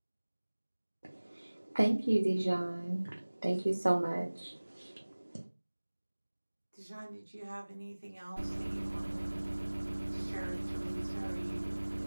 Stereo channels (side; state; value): both; inverted; correlation -1.00